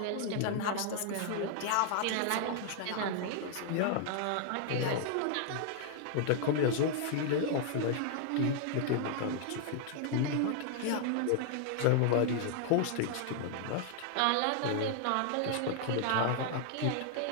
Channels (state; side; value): different; both; correlation -0.01